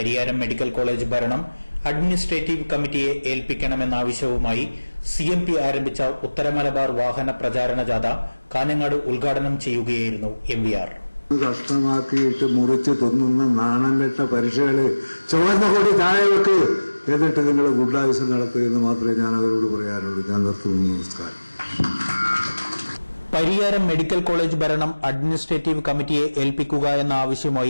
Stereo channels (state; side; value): inverted; both; correlation -1.00